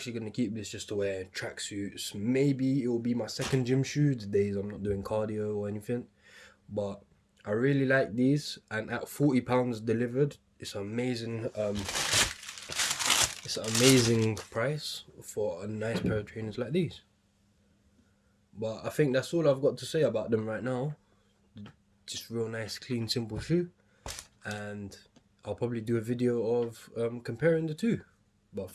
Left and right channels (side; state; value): both; identical; correlation 1.00